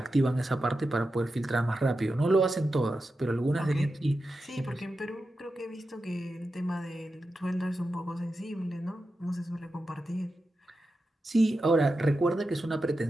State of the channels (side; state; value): both; normal; correlation 0.90